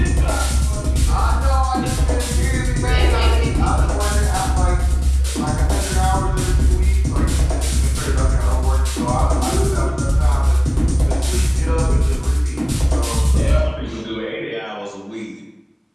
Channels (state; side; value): identical; both; correlation 1.00